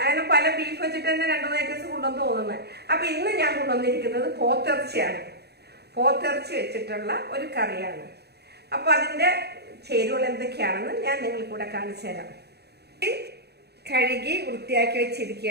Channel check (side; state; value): left; late; 0.48 ms